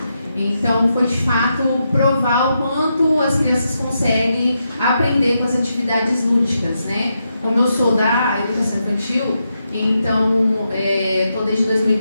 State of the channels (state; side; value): inverted; both; correlation -0.84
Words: Então, foi de fato provar o quanto as crianças conseguem aprender com as atividades lúdicas, né? Como eu sou da educação infantil, então, estou desde